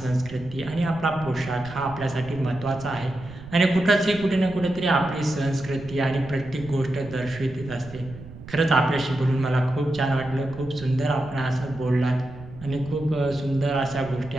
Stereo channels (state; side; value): noise; right; rumble, 16 dB below the sound